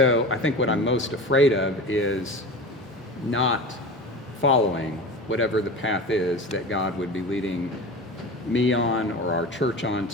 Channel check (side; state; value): both; normal; correlation 0.31